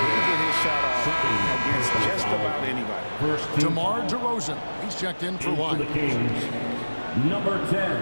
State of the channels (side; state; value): both; inverted; correlation -1.00